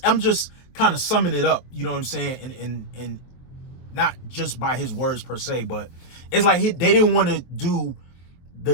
I'm just kind of summing it up, you know what I'm saying, and not just by his words per se, but it's like they didn't want to do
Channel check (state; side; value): late; right; 23 ms